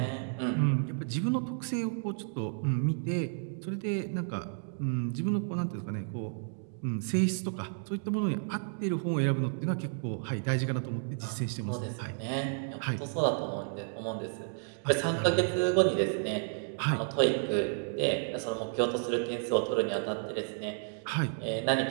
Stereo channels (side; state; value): left; silent; digital silence